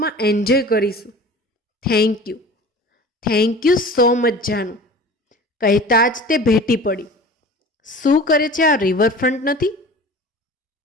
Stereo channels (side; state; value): both; normal; correlation 0.40